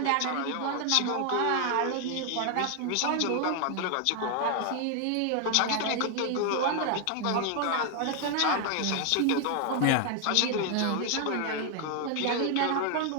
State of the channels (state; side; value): different; both; correlation 0.01